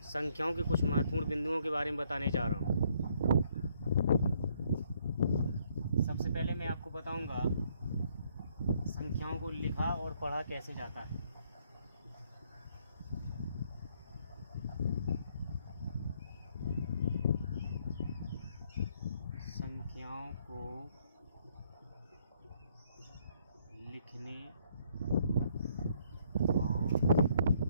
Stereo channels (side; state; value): both; inverted; correlation -0.68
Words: संख्याओं के कुछ महत्वपूर्ण बिंदुओं के बारे में बताने जा रहा हूँ। सबसे पहले मैं आपको बताऊंगा संख्याओं को लिखा और पढ़ा कैसे जाता है। संख्याओं को लिखने और